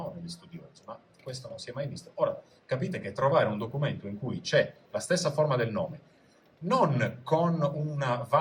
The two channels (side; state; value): both; identical; correlation 1.00